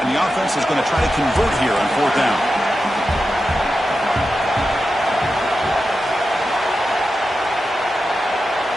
the offense is going to try to convert here on fourth down.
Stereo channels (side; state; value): both; normal; correlation 0.90